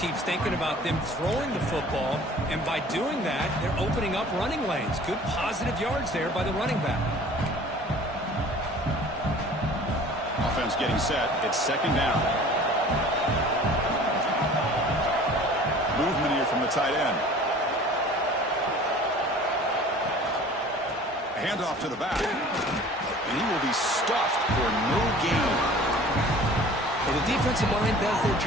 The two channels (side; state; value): both; normal; correlation 0.47